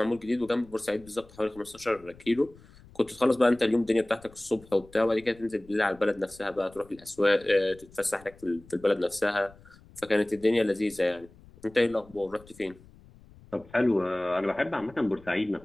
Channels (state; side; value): noise; left; rumble, 24 dB below the sound